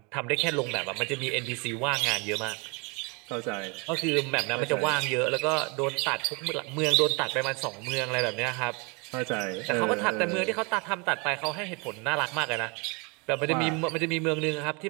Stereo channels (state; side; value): quieter; left; 30.4 dB